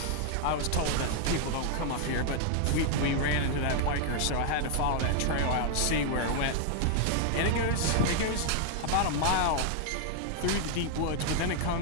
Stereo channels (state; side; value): different; both; correlation 0.00